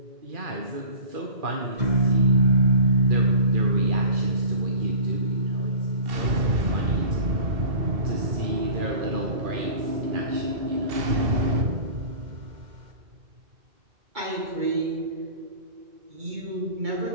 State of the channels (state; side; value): late; left; 2.7 ms